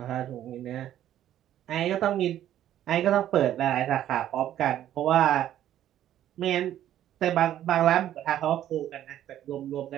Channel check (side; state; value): left; quieter; 11.8 dB